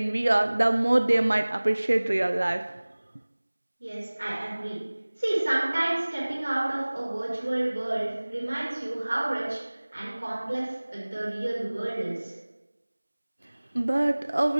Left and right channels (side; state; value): both; inverted; correlation -1.00